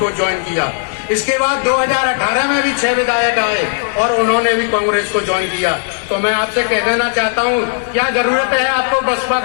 ज्वाइन किया। इसके बाद 2018 में भी 6 विधायक आए और उन्होंने भी कांग्रेस को ज्वाइन किया। तो मैं आपसे कह देना चाहता हूं, क्या जरूरत है आपको बसपा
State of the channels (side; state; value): right; silent; 60 dB below the other